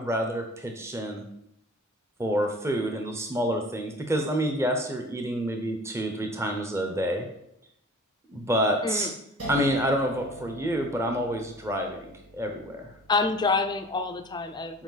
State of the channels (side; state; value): both; normal; correlation 0.44